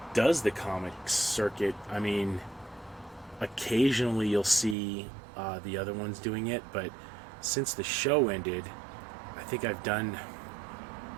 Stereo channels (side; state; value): left; drops out; at 4.8 s